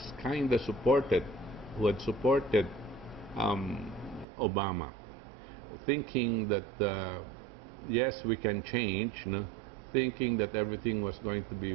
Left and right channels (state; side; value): drops out; left; at 4.2 s